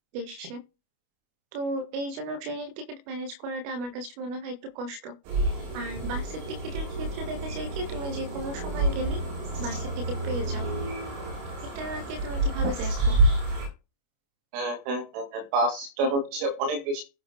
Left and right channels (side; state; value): left; late; 29 ms